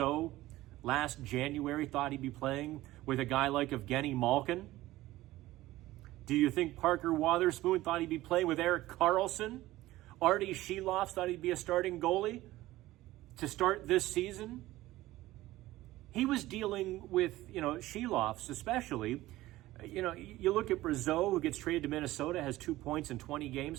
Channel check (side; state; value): left; quieter; 16.8 dB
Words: last January thought he'd be playing with a guy like Evgeny Malkin? Do you think Parker Wotherspoon thought he'd be playing with Erik Karlsson? Artie Sheloff thought he'd be a starting goalie to start this season? He was dealing with, Sheloffs especially. You look at Brazeau, who gets traded to Minnesota, has 2 points in 20